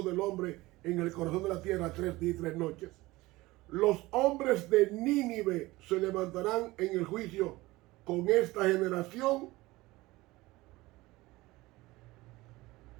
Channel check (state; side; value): quieter; left; 19.8 dB